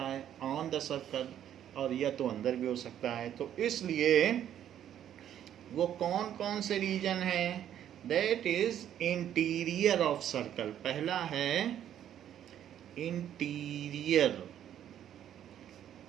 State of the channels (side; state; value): left; quieter; 10.5 dB